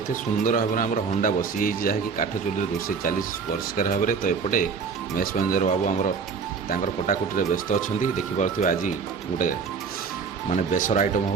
सुंदर भाव में आम हंडा बसी जहाँकि काठ चुली रोसे चली परिष्कार भाव में तो एपटे मेष मैनेजर बाबू आमर कटाकुटी व्यस्त अच्छा देखिपे आज गोटे माने बेसर आइटम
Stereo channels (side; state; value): left; quieter; 5.6 dB